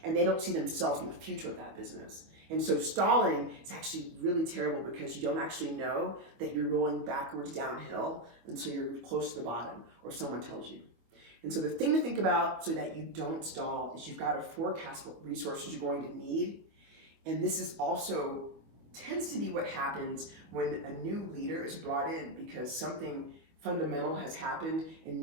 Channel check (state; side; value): late; left; 25 ms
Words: and they don't see themselves in the future of that business. And so stalling is actually really terrible because you don't actually know that you're rolling backwards downhill until you're close to the bottom or someone tells you. And so the thing to think about so that you don't stall is you've got to forecast what resources you're going to need. And this is also tends to be what happens when a new leader is brought in, because something fundamental has happened and